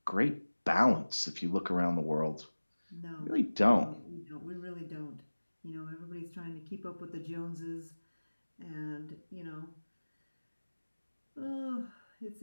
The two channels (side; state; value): both; inverted; correlation -1.00